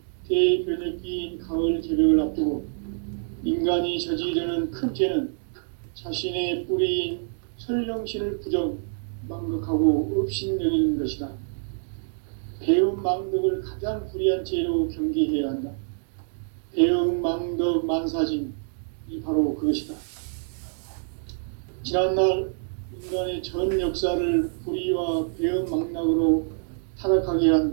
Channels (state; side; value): silent; left; digital silence